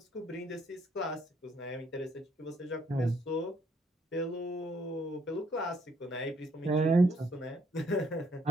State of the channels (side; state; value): both; normal; correlation 0.68